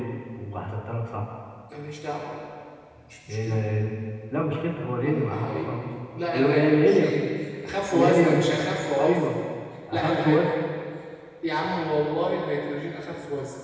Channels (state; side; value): identical; both; correlation 1.00